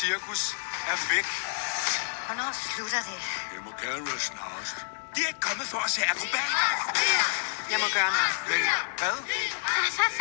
er væk. Hvornår slutter det? Det må gerne være snarest. De er ikke kommet for at se akrobater. Jeg må gøre noget. Men hvad?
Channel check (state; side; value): silent; right; digital silence